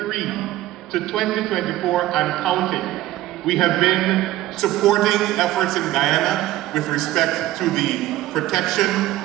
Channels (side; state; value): left; quieter; 15.4 dB